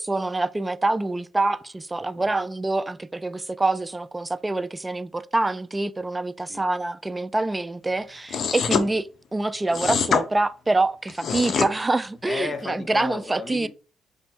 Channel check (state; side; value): normal; both; correlation 0.91